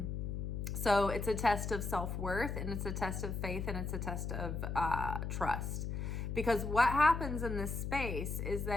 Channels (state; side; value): noise; left; hum, 3 dB below the sound